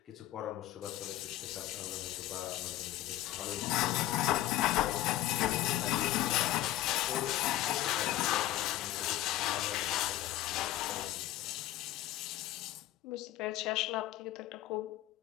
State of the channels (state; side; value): quieter; right; 14.8 dB